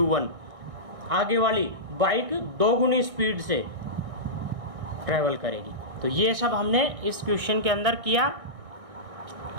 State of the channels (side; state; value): left; late; 1.6 ms